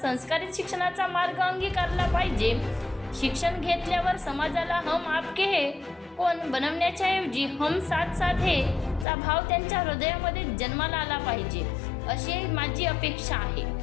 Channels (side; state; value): right; drops out; at 9.1 s